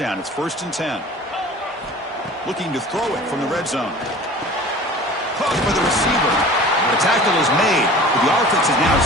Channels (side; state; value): both; normal; correlation 0.42